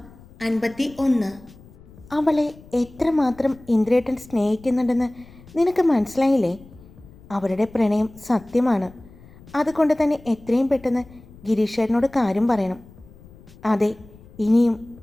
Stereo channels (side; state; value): left; noise; rumble, 22 dB below the sound